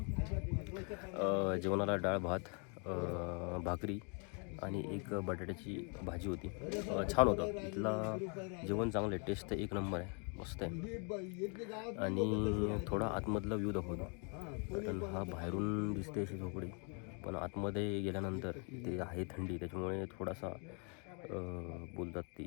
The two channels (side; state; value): right; quieter; 37.0 dB